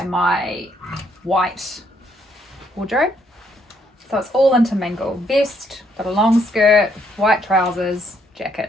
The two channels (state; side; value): normal; both; correlation 0.71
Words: my white wardrobe. So it's all intermingled. Vest, got a long skirt, white trousers,